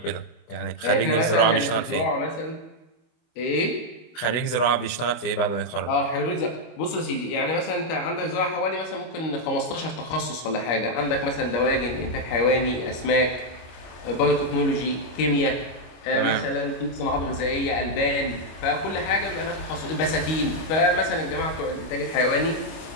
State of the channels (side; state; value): right; late; 25 ms